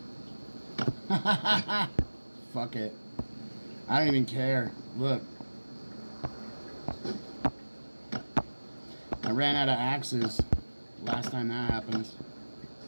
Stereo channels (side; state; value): both; inverted; correlation -1.00